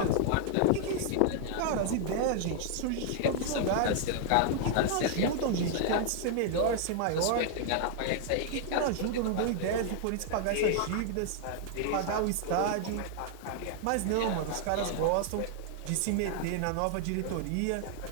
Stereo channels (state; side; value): different; both; correlation 0.00